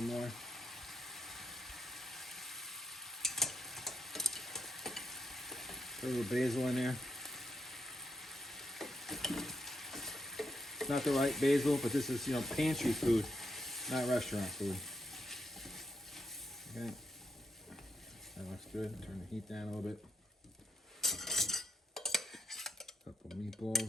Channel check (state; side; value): normal; both; correlation 0.81